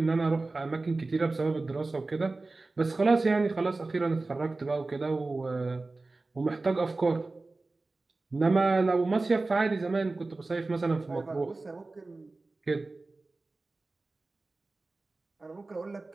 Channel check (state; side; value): quieter; left; 3.4 dB